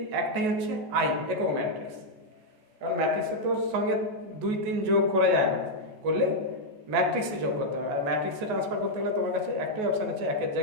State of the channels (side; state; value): left; late; 14 ms